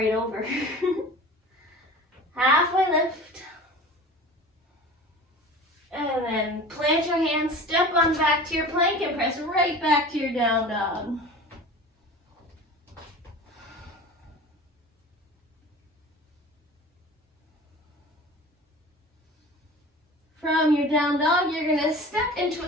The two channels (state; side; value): normal; both; correlation 0.38